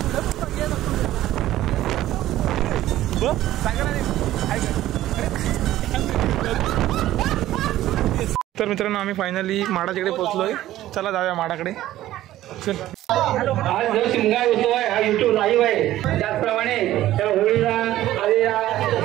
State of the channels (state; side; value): quieter; left; 14.3 dB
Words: तर मित्रांनो आम्ही फायनली माडाकडे पोहोचलोय। चला जाऊया माडाकडे। चल, आज जो शिमगा होतोय हा YouTube लाईव्ह आहे। त्याचप्रमाणे त्या होळीला आलेल्या